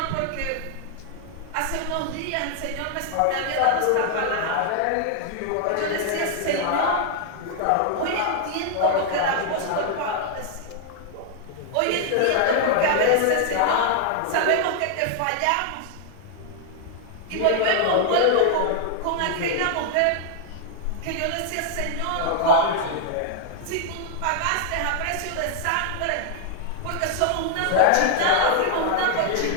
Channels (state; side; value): different; both; correlation -0.01